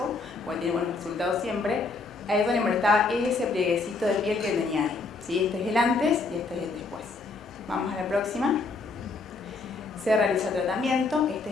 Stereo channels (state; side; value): quieter; right; 3.9 dB